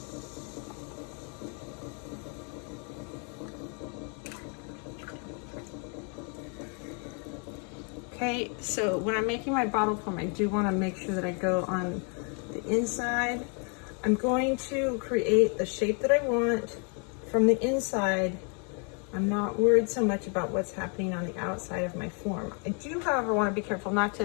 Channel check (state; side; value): quieter; right; 38.4 dB